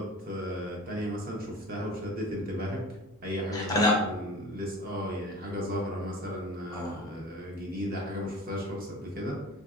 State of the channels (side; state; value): left; noise; hum, 29 dB below the sound